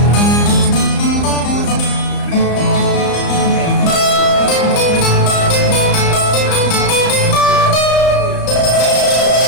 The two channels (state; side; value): late; right; 34 ms